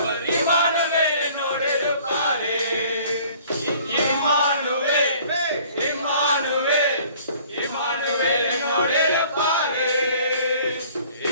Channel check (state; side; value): inverted; both; correlation -0.53